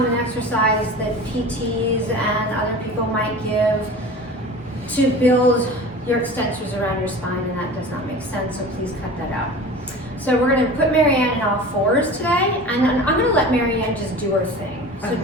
exercise that PTs and other people might give to build your extensors around your spine, and that does not make sense, so please cut that out. So we're going to put Maryanne in all fours today, and then I'm going to let Maryanne just do her thing. So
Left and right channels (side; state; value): both; normal; correlation 0.37